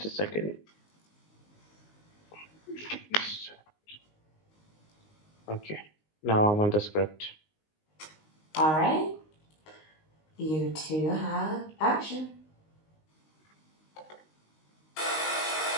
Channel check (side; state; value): right; late; 19 ms